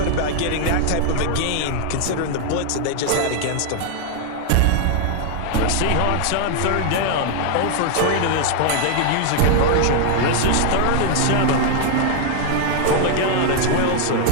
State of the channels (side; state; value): both; different; correlation 0.00